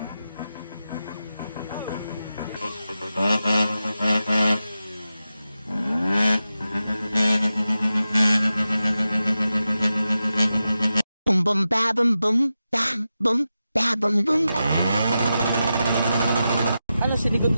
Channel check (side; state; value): both; inverted; correlation -0.91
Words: Boom boom ba boom boom bam boom ba boom boom. Ano, sinigot